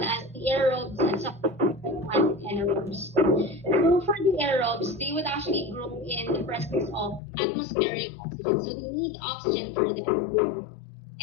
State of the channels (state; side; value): drops out; right; at 7.2 s